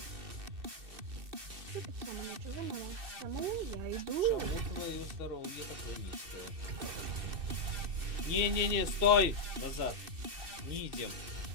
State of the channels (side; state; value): left; late; 2.7 ms